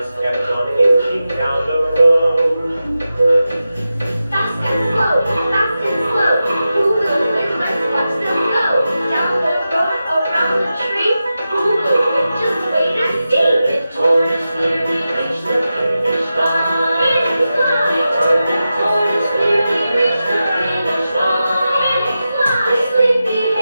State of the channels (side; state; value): both; inverted; correlation -0.92